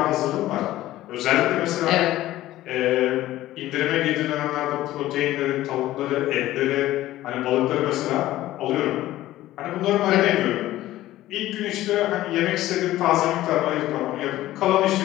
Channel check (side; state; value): right; quieter; 15.2 dB